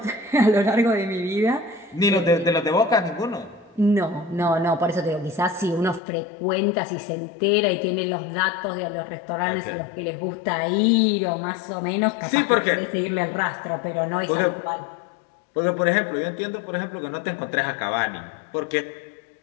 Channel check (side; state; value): right; drops out; at 6.0 s